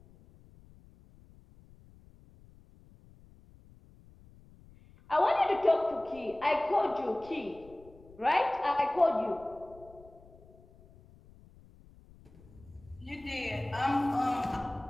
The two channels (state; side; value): noise; left; rumble, 24 dB below the sound